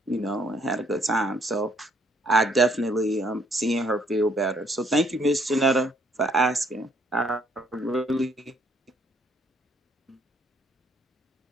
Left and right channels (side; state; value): both; normal; correlation 0.66